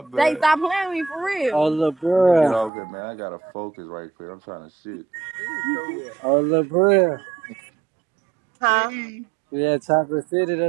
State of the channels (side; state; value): left; drops out; at 2.7 s